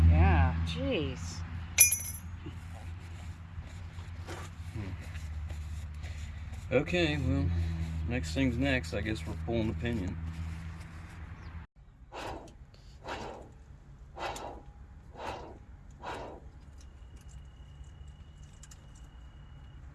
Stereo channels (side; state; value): both; identical; correlation 1.00